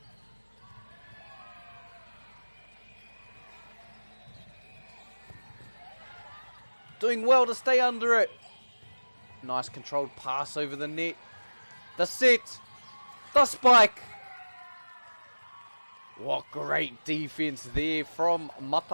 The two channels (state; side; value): inverted; both; correlation -1.00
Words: Doing well to stay under it. Nice controlled pass over the net. The set. The spike. What great defense there from